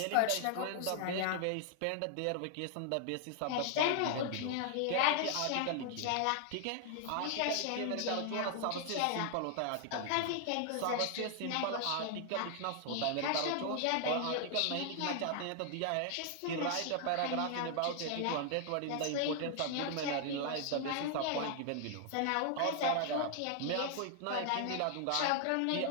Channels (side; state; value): both; different; correlation 0.00